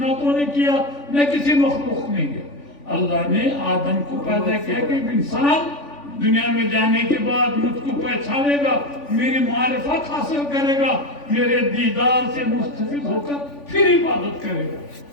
نے کیا، نہ کسی مخلوق نے کیا. اللہ نے آدم کو پیدا کیا کہ انسان دنیا میں جانے کے بعد مجھ کو پہچانے گا، میری معرفت حاصل کرے گا، میرے دیدار سے مستفید ہو کر پھر عبادت کرے گا.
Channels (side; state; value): right; late; 3.5 ms